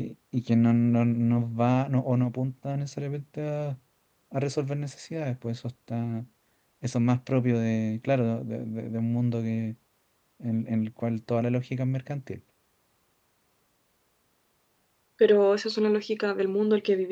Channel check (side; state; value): both; identical; correlation 1.00